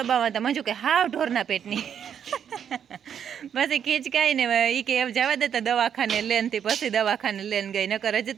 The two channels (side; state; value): left; quieter; 8.4 dB